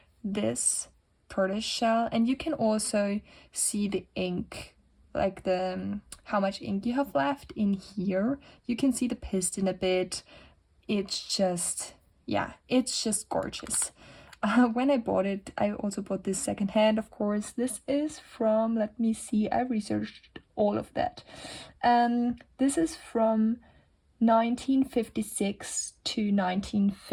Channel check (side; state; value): both; identical; correlation 1.00